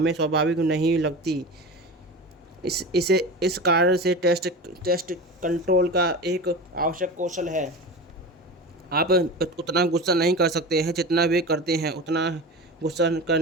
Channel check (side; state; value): both; normal; correlation 0.29